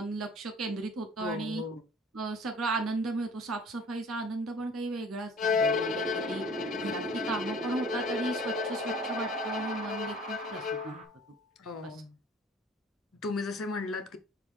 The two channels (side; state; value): both; normal; correlation 0.49